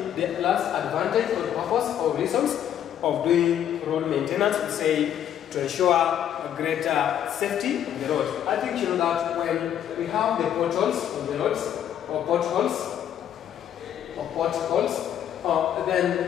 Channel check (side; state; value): right; quieter; 10.1 dB